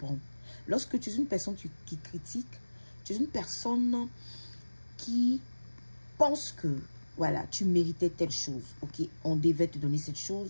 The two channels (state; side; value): inverted; both; correlation -1.00